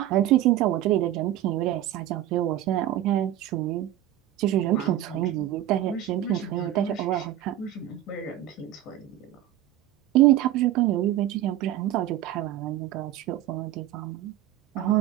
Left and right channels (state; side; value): quieter; left; 13.0 dB